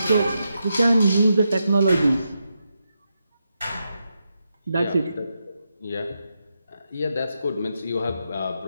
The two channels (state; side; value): inverted; both; correlation -0.85